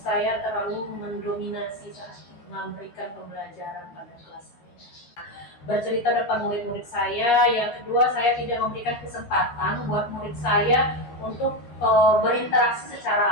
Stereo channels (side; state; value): right; late; 13 ms